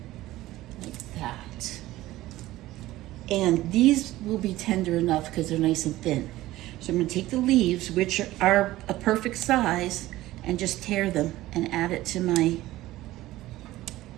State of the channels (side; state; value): left; quieter; 16.5 dB